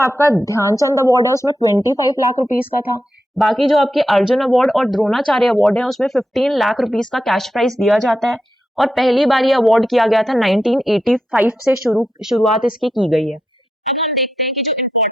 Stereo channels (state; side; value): normal; both; correlation 0.86